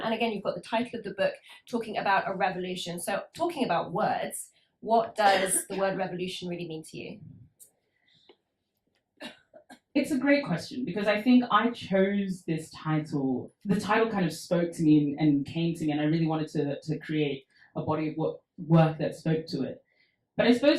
again, you've got the title of the book talking about a revolution. So talking about words, what does the word revolution really mean to you? It's a great question, because I think I chose this title. The title kind of spoke to me and came to me, and I really wanted to create a body of work that spoke to it. But I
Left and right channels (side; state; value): both; identical; correlation 1.00